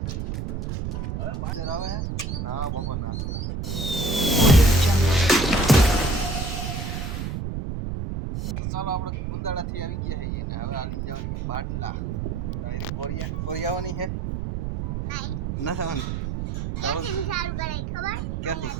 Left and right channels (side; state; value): right; noise; rumble, 3 dB below the sound